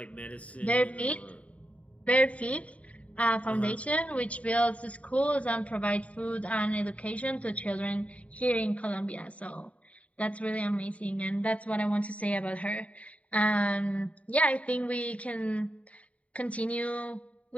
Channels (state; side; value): late; right; 0.066 ms